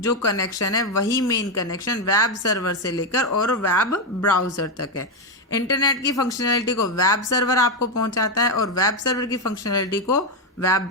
कनेक्शन है, वही मेन कनेक्शन वेब सर्वर से लेकर और वेब ब्राउज़र तक है। इंटरनेट की फंक्शनैलिटी को वेब सर्वर आपको पहुंचाता है, और वेब सर्वर की फंक्शनैलिटी को वेब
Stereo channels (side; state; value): both; normal; correlation 0.06